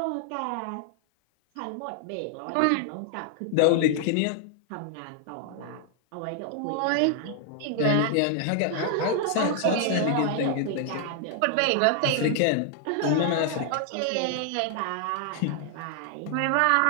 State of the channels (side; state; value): both; different; correlation 0.00